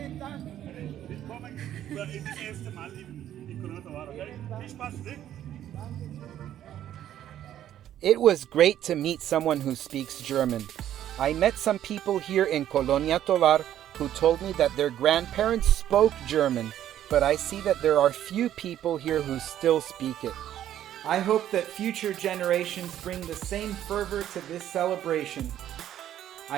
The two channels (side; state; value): left; quieter; 11.5 dB